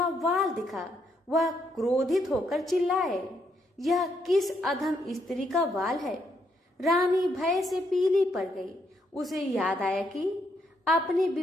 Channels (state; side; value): normal; both; correlation 0.76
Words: वाल दिखा। वह क्रोधित होकर चिल्लाए, यह किस अधम स्त्री का वाल है? रानी भय से पीली पड़ गई। उसे याद आया कि अपनी